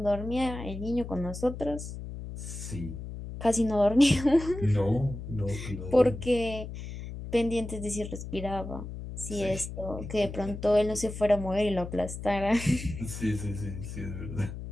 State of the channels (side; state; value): left; noise; hum, 9 dB below the sound